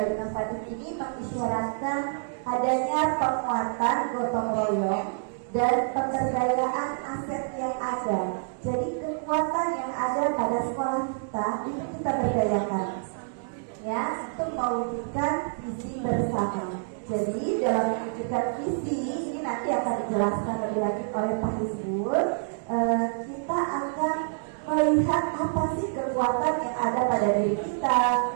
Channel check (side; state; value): left; silent; digital silence